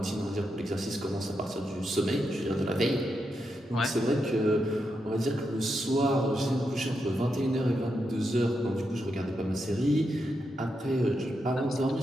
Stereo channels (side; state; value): both; normal; correlation 0.84